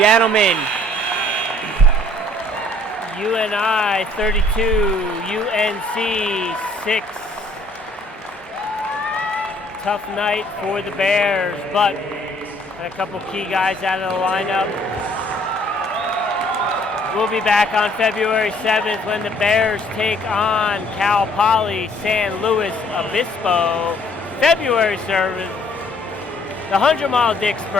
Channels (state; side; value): normal; both; correlation 0.60